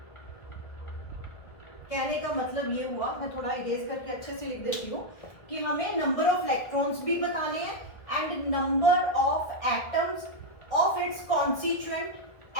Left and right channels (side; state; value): right; late; 1.7 ms